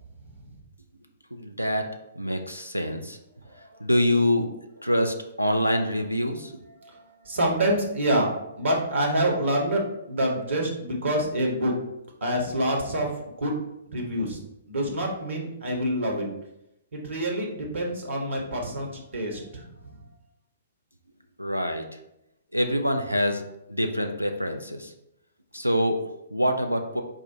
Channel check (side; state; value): both; inverted; correlation -0.70